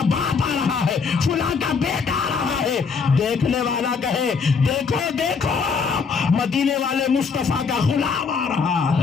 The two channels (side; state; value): right; quieter; 5.4 dB